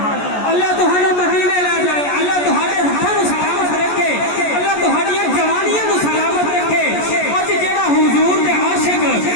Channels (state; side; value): late; right; 14 ms